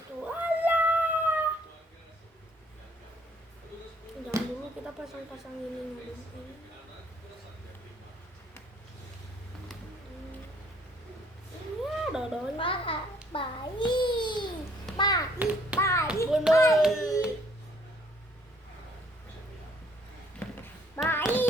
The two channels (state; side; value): normal; both; correlation 0.62